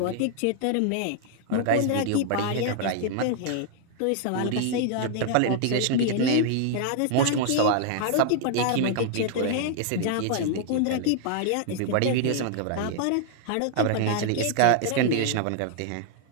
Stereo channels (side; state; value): both; different; correlation -0.01